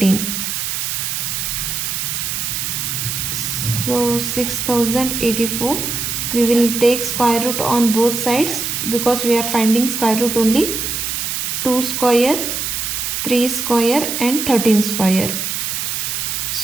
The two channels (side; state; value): right; noise; hiss, 2 dB below the sound